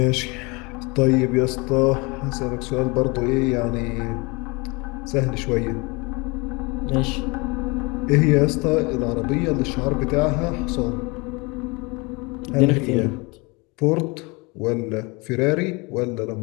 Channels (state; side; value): quieter; right; 27.4 dB